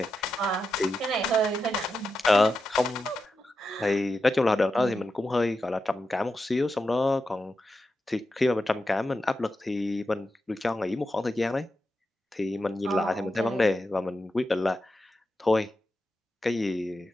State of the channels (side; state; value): both; normal; correlation 0.89